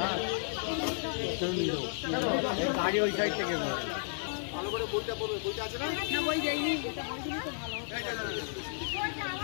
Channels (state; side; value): silent; right; 56 dB below the other